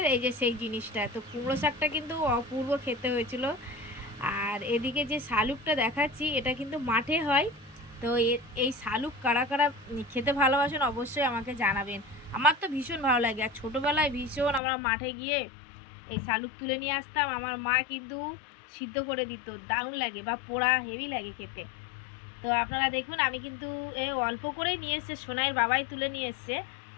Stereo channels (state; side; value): drops out; right; at 14.6 s